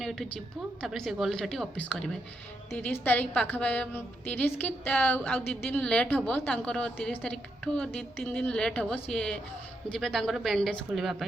ଏଠୁ ଯିବୁ, ତାପରେ ସେ ଗଲେ ସେଠି ଅଫିସ୍ କରିବେ। 30 ତାରିଖ ପାଖାପାଖି, 30 କି ଆଉ 2 ଦିନ ଲେଟ୍ ହେବ ତାଙ୍କର। 30 ତାରିଖଠୁ 2-3 ଦିନ ଲେଟ୍ ହେବ। ସିଏ ଯିବେ ତାଙ୍କର ବ୍ୟାଣ୍ଡେଜ୍ ଖୋଲିବା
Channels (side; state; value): both; normal; correlation 0.81